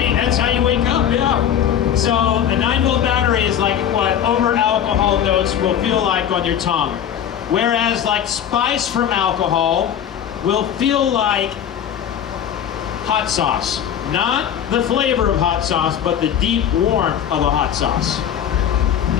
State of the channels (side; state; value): right; quieter; 9.4 dB